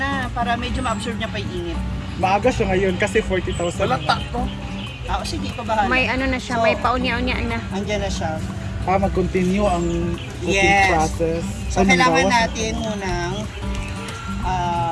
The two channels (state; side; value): identical; both; correlation 1.00